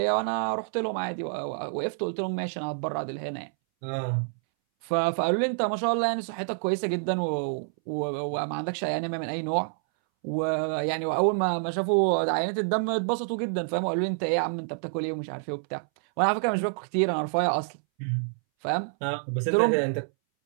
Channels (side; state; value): left; silent; 60 dB below the other